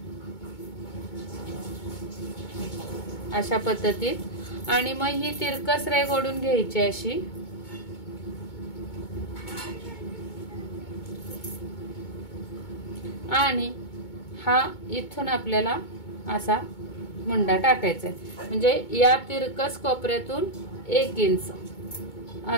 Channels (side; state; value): right; late; 2.2 ms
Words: अशा पद्धतीत। आणि मग ही तिरकस रेघ ओढून घ्यायची अशी। आणि हा इथून आपल्याला असा मुंडा टाकायचा आहे, म्हणजे या तिरकस कोपऱ्यातून 1 इंच